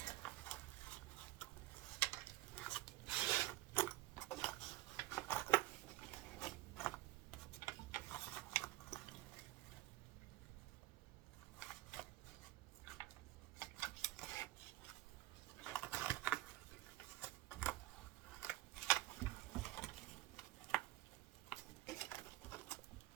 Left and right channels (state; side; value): quieter; left; 16.8 dB